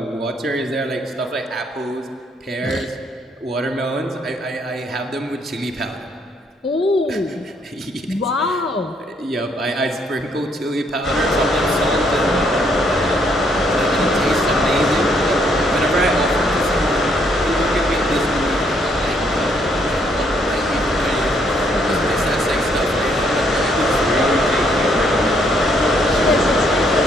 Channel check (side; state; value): both; normal; correlation 0.70